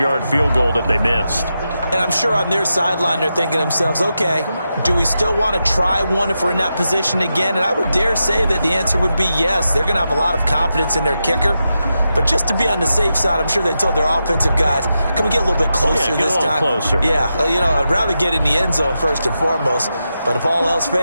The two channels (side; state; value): both; inverted; correlation -0.88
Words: field goal that they missed. And I'm sure on their sideline, they're thinking to themselves, okay, do we still want to try one if we're in that position again? And I would dare say that the answer would be yes. They're going to have a lot of confidence in their kicker. But just to be on the safe side, I'm sure they told their offensive guys, can we get a little bit closer this time? Closer. Yeah, you know, I'd rather get in the end zone first and foremost. But if all else